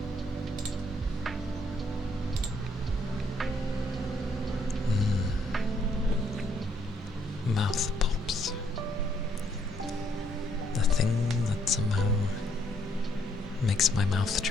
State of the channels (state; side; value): normal; both; correlation 0.70